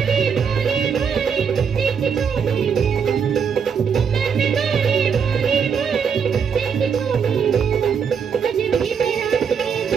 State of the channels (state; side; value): quieter; left; 6.7 dB